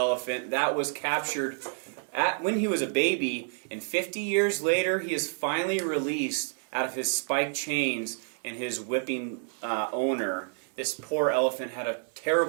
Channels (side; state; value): left; silent; digital silence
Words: That was captured when he was a baby, and 50 years later he is finally released out of his spiked chains and his whipping owner. This poor elephant had a